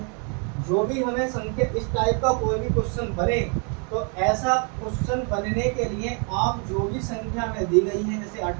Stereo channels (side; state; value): left; quieter; 37.6 dB